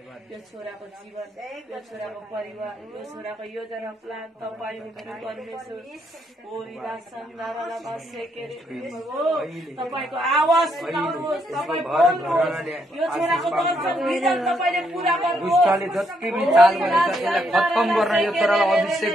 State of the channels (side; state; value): both; normal; correlation 0.75